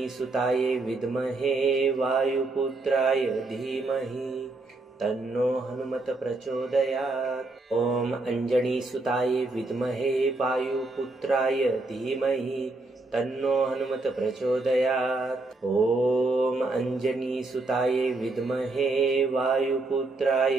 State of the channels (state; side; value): quieter; left; 3.1 dB